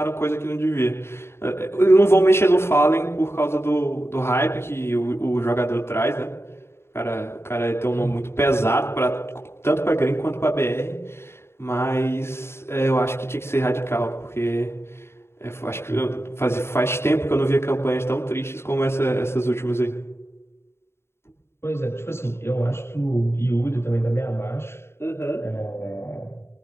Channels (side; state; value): right; late; 0.12 ms